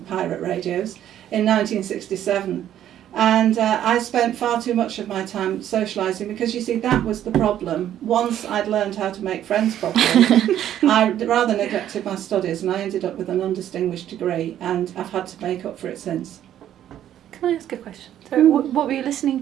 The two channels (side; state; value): left; quieter; 11.2 dB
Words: pirate radios, in 1967. And I spent far too much of my time socialising because, you see, that was the problem. Once I'd learned how to make friends properly, I rather neglected my studies, and I ended up with an undistinguished degree, and I've had to make up for it since. Can I ask a question? So, what were you listening